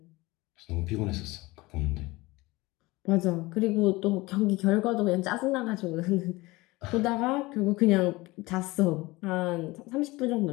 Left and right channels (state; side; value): quieter; right; 21.5 dB